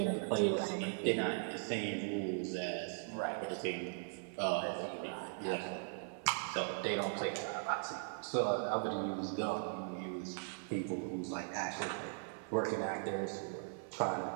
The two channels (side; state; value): left; silent; 52 dB below the other